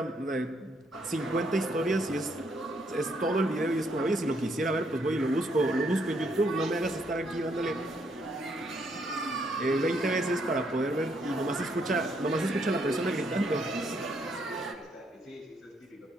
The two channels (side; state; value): both; normal; correlation 0.72